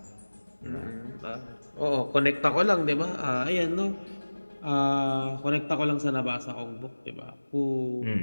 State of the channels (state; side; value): inverted; both; correlation -1.00